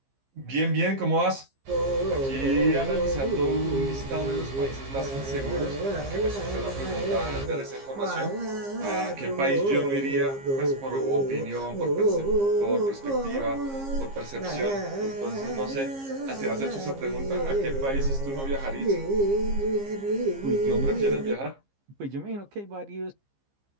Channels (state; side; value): late; left; 15 ms